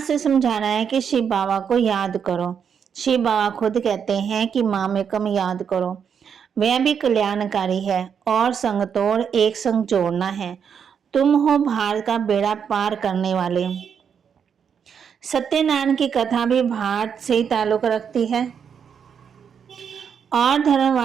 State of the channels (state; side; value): quieter; left; 7.3 dB